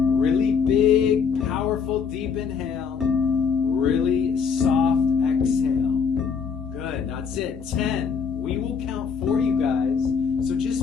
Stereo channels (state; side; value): quieter; right; 6.2 dB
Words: really big, powerful, deep inhale. Really soft exhale. Good, that's it. 10. We will count for you guys. So just